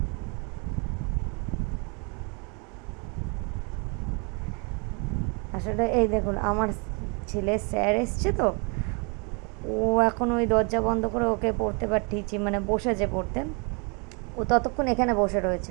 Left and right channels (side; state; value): left; quieter; 33.6 dB